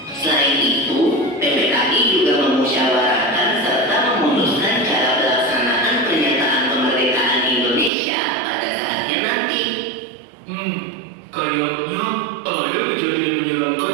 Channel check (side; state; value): left; drops out; at 7.9 s